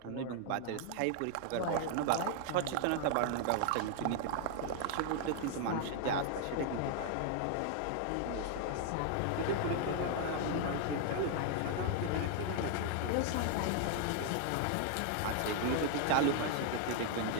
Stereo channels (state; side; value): different; both; correlation 0.00